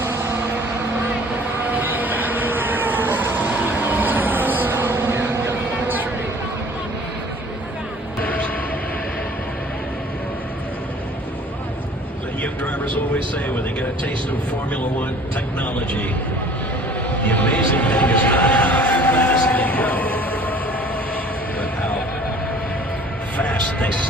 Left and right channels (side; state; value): both; normal; correlation 0.50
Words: The young drivers always say when they get a taste of Formula One technology, the amazing thing is not how fast they go, but how fast they